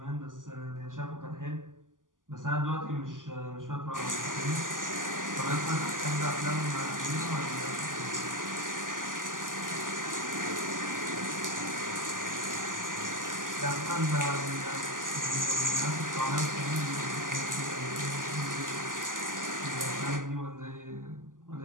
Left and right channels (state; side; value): late; left; 0.88 ms